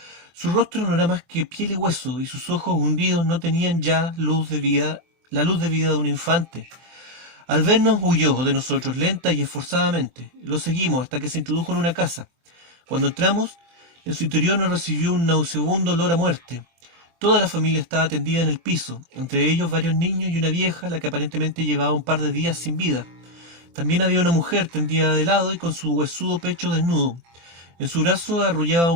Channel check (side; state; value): left; late; 24 ms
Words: Su rostro no era más que piel y hueso, y sus ojos hundidos no tenían ya la luz de vida de un infante. Al vernos huyó de nosotros lenta y esforzadamente. Lo seguimos hasta que se introdujo en una casa. Cuando entramos, en su interior nos recibió un nauseabundo olor a muerte. Toda la familia estaba tendida en el piso, entre ellos varios niños y una vieja, la que aparentemente llevaba un par de días sin vida. También había una mujer tendida de lado y con su huesudo pecho desnudo. En su brazo arrullaba